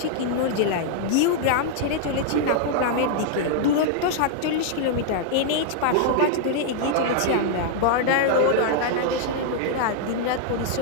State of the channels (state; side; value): different; both; correlation -0.01